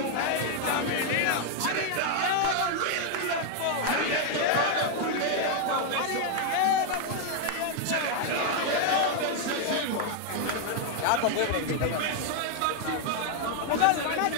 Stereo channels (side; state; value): both; different; correlation 0.00